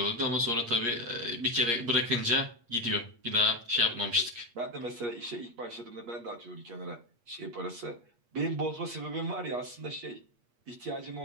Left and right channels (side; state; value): left; late; 8.5 ms